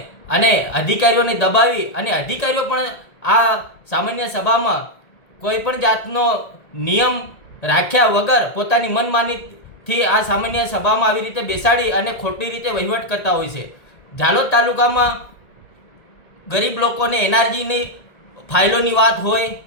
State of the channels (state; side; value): late; right; 1.9 ms